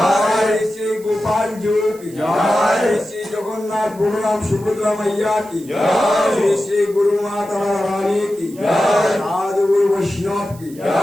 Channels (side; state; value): right; noise; hiss, 22 dB below the sound